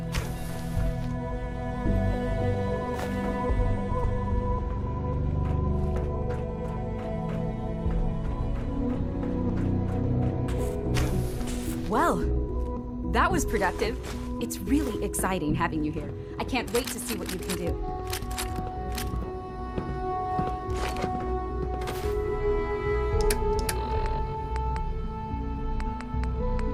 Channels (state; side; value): identical; both; correlation 1.00